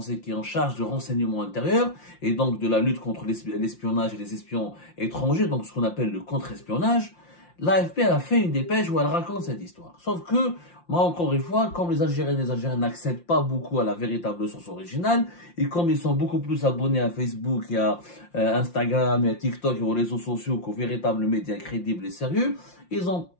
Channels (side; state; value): right; late; 5.7 ms